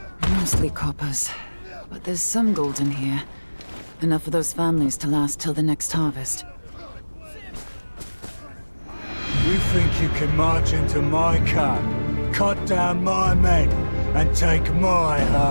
Mostly coppers, but there's some gold in here. Enough for those families to last till the next harvest. You think you can march into my camp, cut down my men, and take my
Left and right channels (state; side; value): inverted; both; correlation -1.00